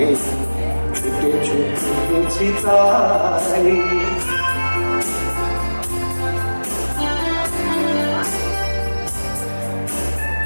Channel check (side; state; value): both; inverted; correlation -1.00